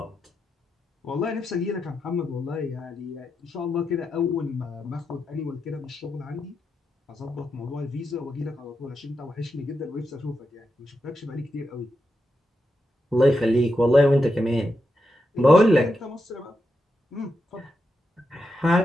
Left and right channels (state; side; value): normal; both; correlation 0.86